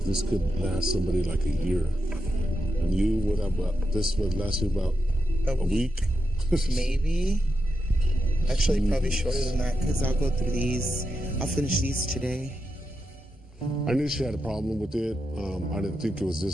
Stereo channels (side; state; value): both; normal; correlation 0.87